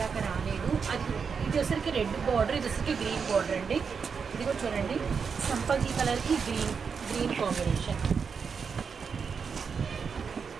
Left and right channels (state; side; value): quieter; left; 5.9 dB